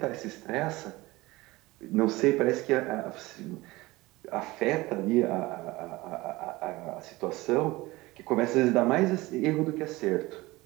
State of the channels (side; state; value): left; quieter; 20.4 dB